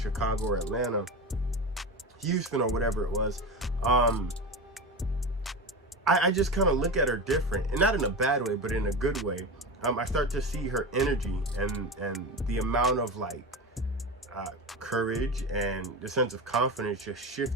or Atlanta, Houston or whatever it was, I just kind of look at her different, and not in a bad way, but in a good way. I start to see her energy and the amount of like courage and the sense of confidence just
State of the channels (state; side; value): normal; both; correlation 0.24